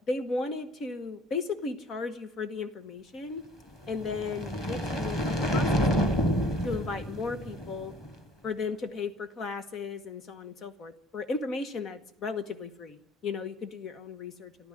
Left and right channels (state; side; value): normal; both; correlation 0.53